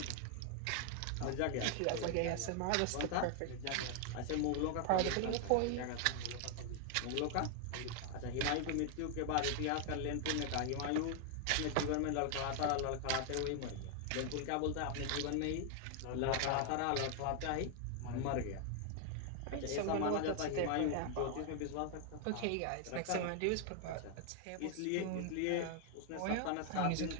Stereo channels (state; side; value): different; both; correlation 0.00